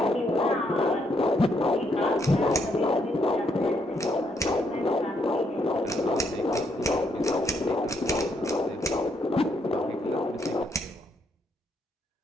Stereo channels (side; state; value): both; normal; correlation 0.75